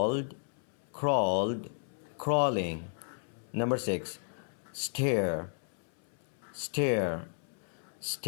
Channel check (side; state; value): right; silent; 55 dB below the other